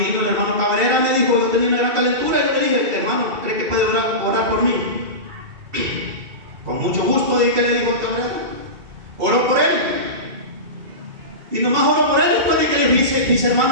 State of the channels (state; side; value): late; left; 2.7 ms